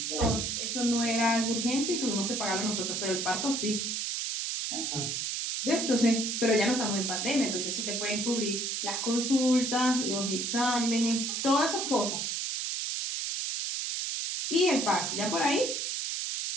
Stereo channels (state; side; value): noise; right; hiss, 1 dB below the sound